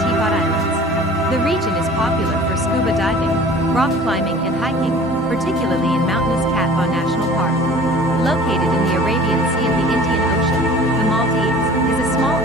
Islands. The region is popular for scuba diving, rock climbing, and hiking, particularly in mountainous Cat Ba National Park. Located in the Arabian Sea of the Indian Ocean, the Maldives is a small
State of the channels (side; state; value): both; normal; correlation 0.45